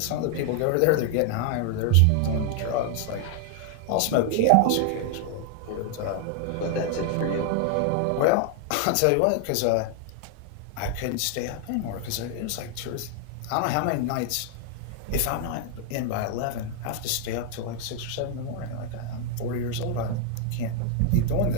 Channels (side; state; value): both; different; correlation 0.00